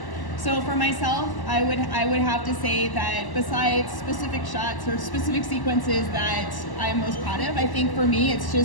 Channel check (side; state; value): right; late; 1.0 ms